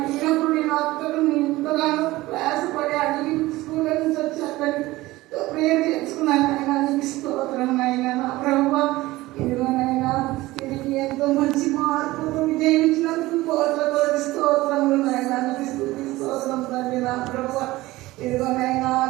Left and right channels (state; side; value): quieter; left; 18.6 dB